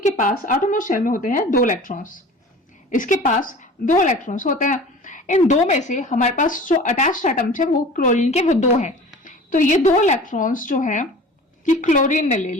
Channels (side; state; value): both; normal; correlation 0.41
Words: के पास आटोमोस्ट शेल में होते हैं 2 इलेक्ट्रॉन्स, इसके पास 2 इलेक्ट्रॉन्स होते हैं। इन 2 में से हमारे पास जो अटैच्ड एटम्स है वो क्लोरीन के, वो 2 हैं। तो ये 2 इलेक्ट्रॉन्स जो है कि क्लोरीन ने ले